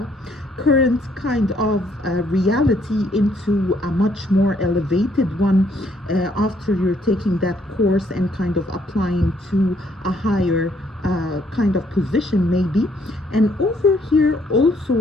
current kind of reality into a much more elevated one after you're taking that course and kind of applying to a higher kind of position maybe. And over here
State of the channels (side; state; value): both; normal; correlation 0.68